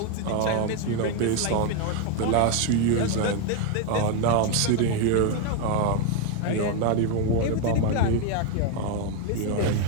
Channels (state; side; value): different; both; correlation 0.01